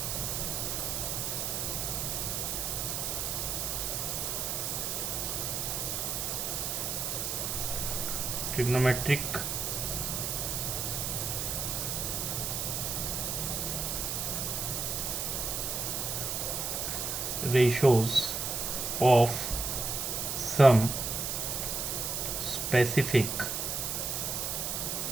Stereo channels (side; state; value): right; noise; hiss, 1 dB below the sound